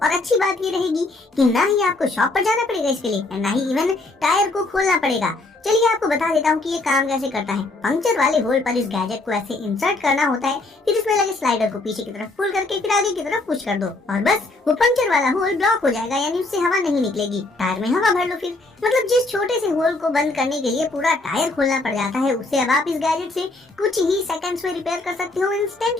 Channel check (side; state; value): right; quieter; 3.1 dB